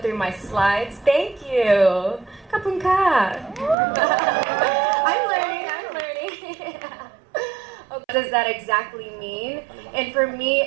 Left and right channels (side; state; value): left; drops out; at 3.8 s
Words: my slides? Thank you. Kapun ka. I'm learning. What does that exactly mean? And for me